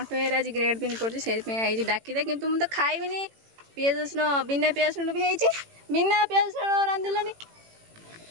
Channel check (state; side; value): late; left; 18 ms